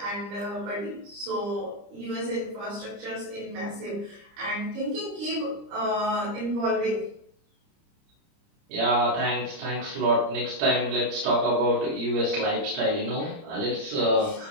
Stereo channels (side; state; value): left; late; 30 ms